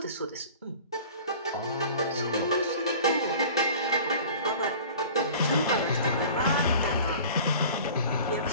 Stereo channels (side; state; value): both; inverted; correlation -0.43